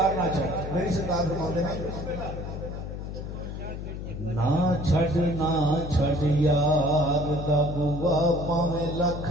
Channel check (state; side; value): noise; left; hum, 7 dB below the sound